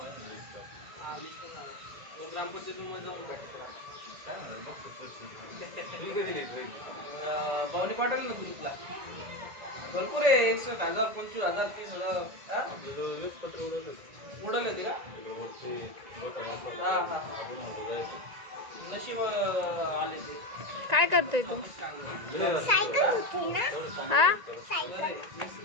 ग्रामपंचायतीमध्ये जाऊन भेटतो भावनी पाठवली ना ग्रुपला भरपूर आहे 61,000 25,000 30,000 पत्र उडवले होते का नशीब आले ते काय करतोय तू सायकल होती ना हा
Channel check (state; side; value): late; left; 1.9 ms